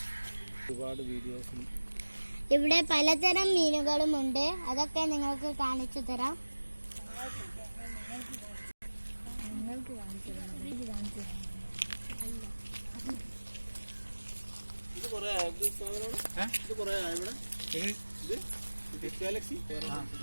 ഇവിടെ പലതരം മീനുകളുമുണ്ട്. അതൊക്കെ നിങ്ങൾക്ക് കാണിച്ചു തരാം.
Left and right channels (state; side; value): inverted; both; correlation -1.00